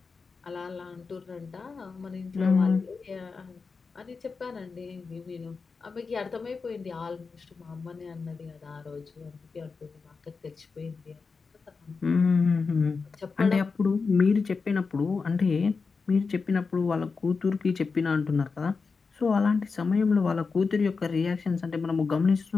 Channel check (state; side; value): quieter; right; 4.7 dB